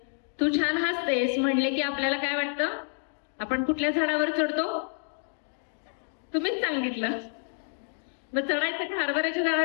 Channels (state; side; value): silent; right; 57 dB below the other